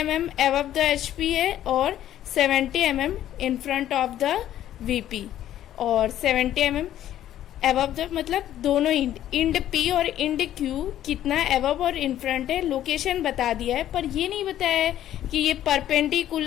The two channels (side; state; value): right; quieter; 12.1 dB